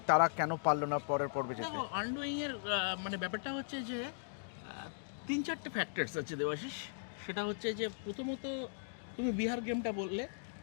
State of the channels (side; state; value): right; silent; digital silence